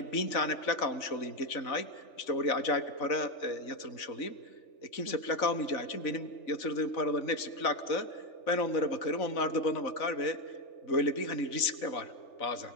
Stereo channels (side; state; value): right; late; 3.4 ms